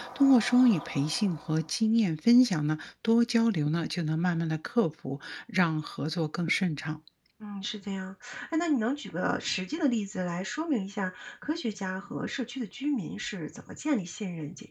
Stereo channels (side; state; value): both; identical; correlation 1.00